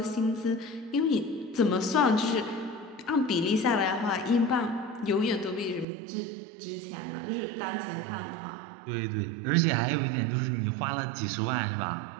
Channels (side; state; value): left; drops out; at 5.9 s